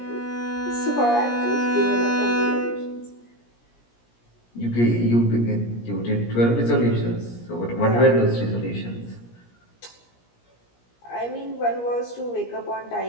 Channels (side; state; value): right; late; 17 ms